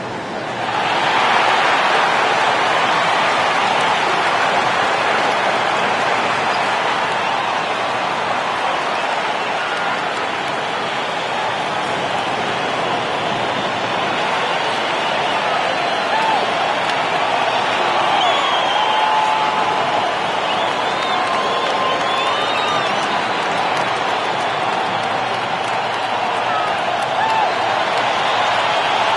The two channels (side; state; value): both; identical; correlation 1.00